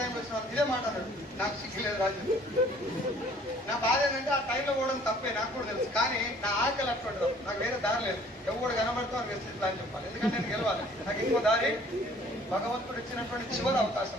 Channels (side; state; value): both; normal; correlation 0.55